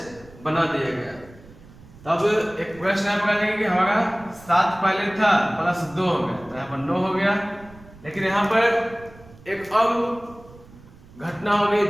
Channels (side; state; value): right; noise; rumble, 22 dB below the sound